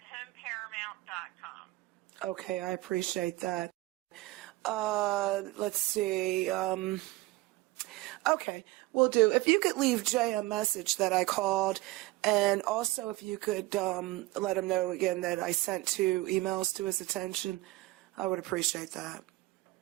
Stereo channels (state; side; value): quieter; left; 20.0 dB